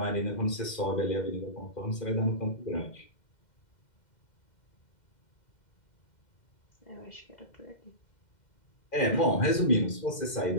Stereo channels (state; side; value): late; right; 2.1 ms